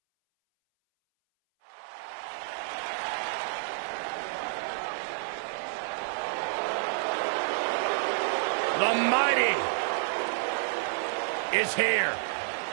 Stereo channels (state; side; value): silent; left; 58 dB below the other